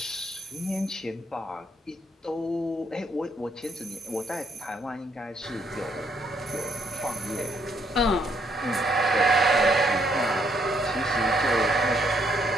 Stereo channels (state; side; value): normal; both; correlation 0.71